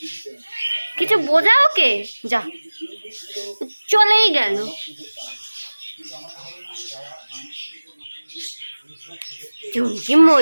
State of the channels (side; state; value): both; inverted; correlation -1.00